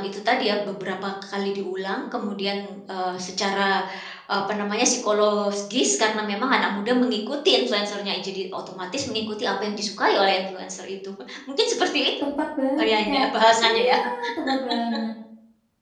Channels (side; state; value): both; identical; correlation 1.00